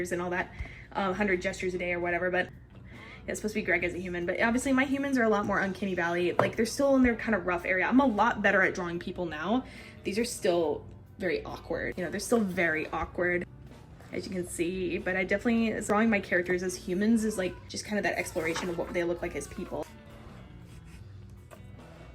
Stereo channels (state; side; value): identical; both; correlation 1.00